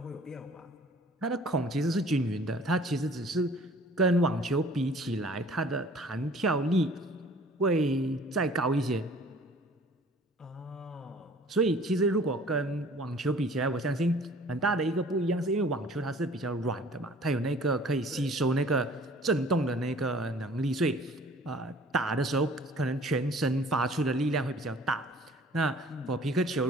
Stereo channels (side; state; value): both; normal; correlation 0.51